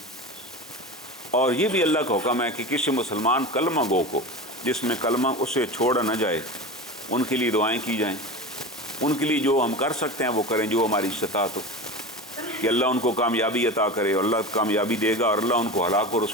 اور یہ بھی اللہ کا حکم ہے کہ کسی مسلمان کلمہ گو کو جس میں کلمہ اسے چھوڑا نہ جائے, ان کے لیے دعائیں کی جائیں. ان کے لیے جو ہم کر سکتے ہیں وہ کریں, جو ہماری استطاعت ہو, کہ اللہ ان کو کامیابی عطا کرے. اور اللہ کامیابی دے گا اور اللہ ان کو ہلاک و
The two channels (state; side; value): normal; both; correlation 0.28